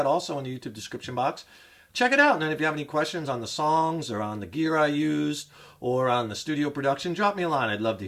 also in the YouTube description box. Check it out, and then if you have any questions on the songs or on the gear I used or on the studio production, drop me a line. I'd love to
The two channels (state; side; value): identical; both; correlation 1.00